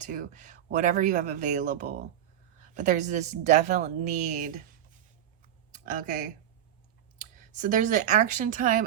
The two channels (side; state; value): left; quieter; 10.8 dB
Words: whatever you have available. But there's this definite need. Okay. So there's an action time